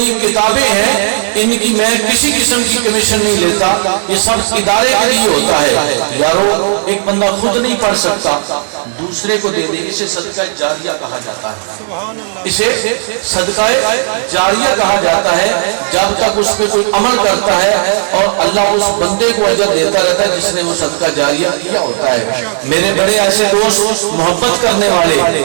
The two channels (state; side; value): silent; left; digital silence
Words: کتابیں ہیں ان کی میں کسی قسم کی کمیشن نہیں لیتا، یہ سب ادارے کے لیے ہوتا ہے۔ یارو ایک بندہ خود نہیں پڑھ سکتا، دوسرے کو دے دے، اسے صدقہ جاریہ کہا جاتا ہے، اسے صدقہ جاریہ کہا جاتا ہے۔ جب تک اس پہ کوئی عمل کرتا ہے اور اللہ اس بندے کو اجر دیتا رہتا ہے جس نے وہ صدقہ جاریہ کیا ہوتا ہے۔ میرے بڑے ایسے دوست محبت کرنے والے